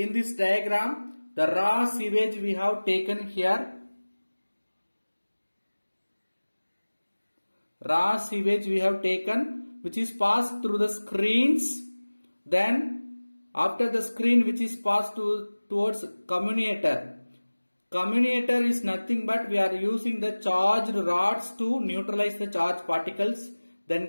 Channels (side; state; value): both; inverted; correlation -1.00